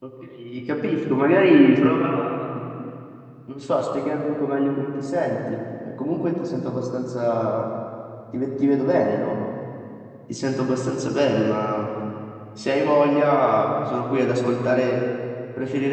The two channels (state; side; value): identical; both; correlation 1.00